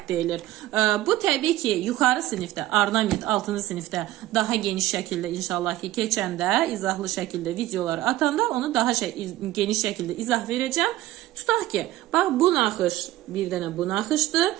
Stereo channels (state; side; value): quieter; left; 15.5 dB